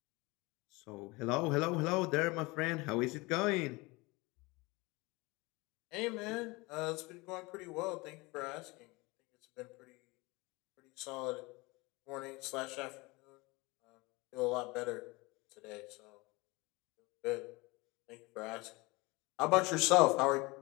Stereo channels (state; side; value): quieter; right; 24.1 dB